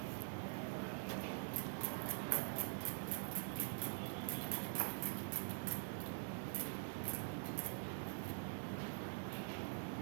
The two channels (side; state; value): left; silent; digital silence